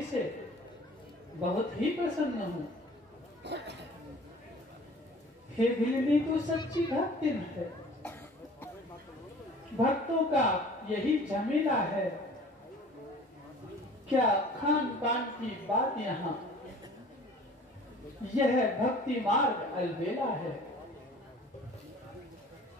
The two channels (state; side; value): normal; both; correlation 0.47